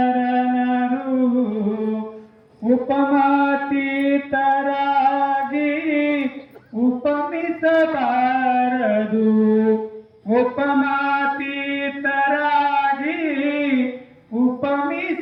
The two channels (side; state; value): both; identical; correlation 1.00